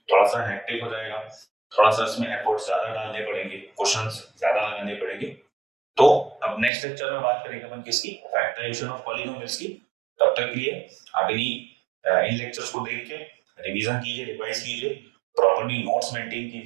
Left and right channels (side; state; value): left; drops out; at 6.7 s